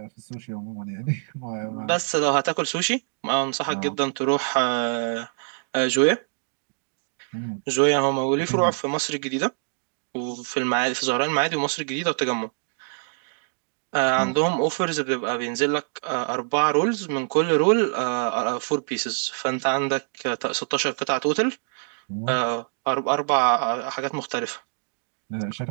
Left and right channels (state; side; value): silent; left; 62 dB below the other